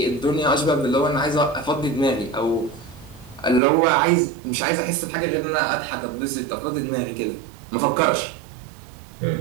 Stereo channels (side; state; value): left; drops out; at 3.6 s